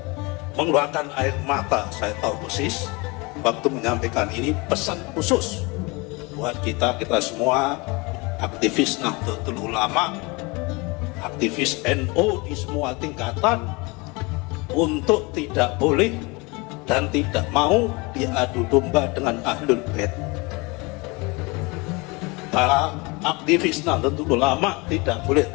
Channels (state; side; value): quieter; right; 26.7 dB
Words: mengeluarkan air mata, saya tahu persis waktu menyampaikan ini. Pesan khusus buat kita semua, aktivis Nahdlatul Ulama, aktivis NU di semua tingkatan, untuk tidak boleh dan tidak mau diadu domba dengan Ahlul Bait. Para aktivis Nahdlatul Ulama tidak boleh